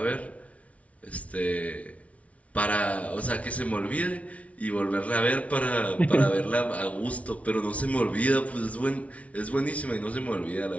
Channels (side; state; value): right; late; 0.065 ms